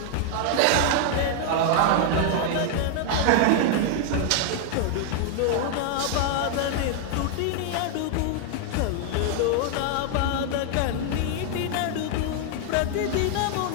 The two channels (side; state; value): both; different; correlation 0.00